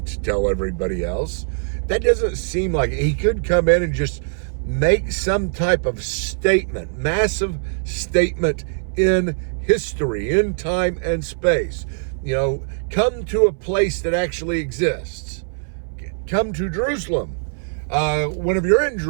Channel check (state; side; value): silent; left; 61 dB below the other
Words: to tell everybody else. That doesn't seem like it. He could come in and just make some type of statement, massive statement in history, in time and space. Come to a place that actually exists. Come to Jerusalem. Whenever you're in